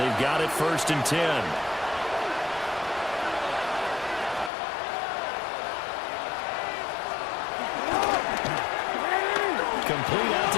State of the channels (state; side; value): drops out; right; at 4.5 s